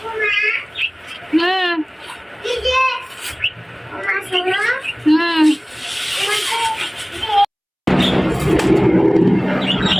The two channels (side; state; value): both; identical; correlation 1.00